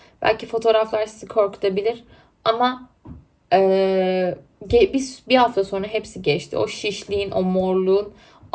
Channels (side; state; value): both; identical; correlation 1.00